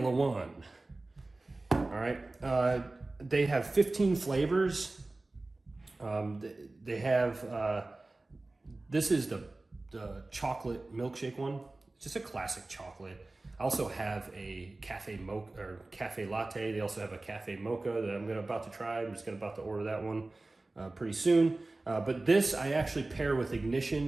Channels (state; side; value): quieter; left; 3.0 dB